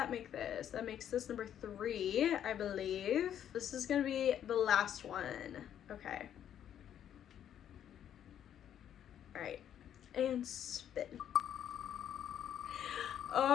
make this? That makes this number 3, I believe. This is gonna be the last one. Okay. All right, and spin.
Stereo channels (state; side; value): quieter; right; 10.0 dB